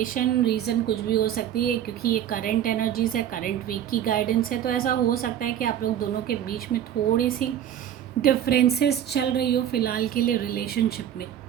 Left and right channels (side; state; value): left; quieter; 10.4 dB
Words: रीज़न कुछ भी हो सकती है, क्योंकि ये करंट एनर्जीज़ है, करंट वीक की गाइडेंस है। तो ऐसा हो सकता है कि आप लोग दोनों के बीच में थोड़ी सी डिफरेंसेस चल रही हो फ़िलहाल के लिए रिलेशनशिप में